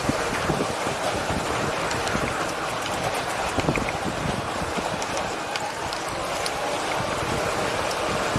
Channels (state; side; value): identical; both; correlation 1.00